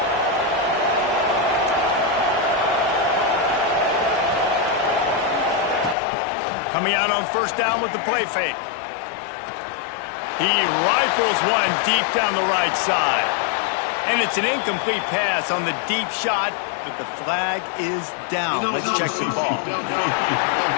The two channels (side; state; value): right; drops out; at 6.0 s